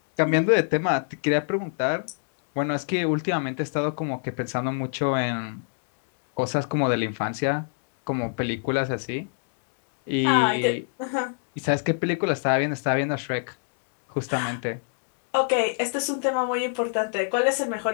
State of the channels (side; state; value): right; silent; digital silence